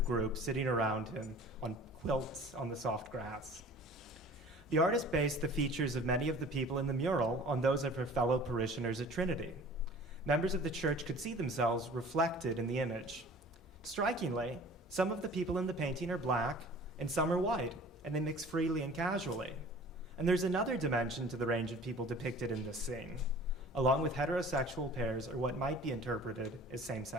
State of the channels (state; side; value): normal; both; correlation 0.45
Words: group sitting around him on quilts on the soft grass. The artist based the features of many of the people in the mural on those of her fellow parishioners at Trinity. Members of the church could see themselves reflected in the image. Strikingly, some of the people in the painting are black and some are white, and they mix freely and casually. And there's another dimension to the range of people depicted in this scene, along with heterosexual pairs or what might be interpreted as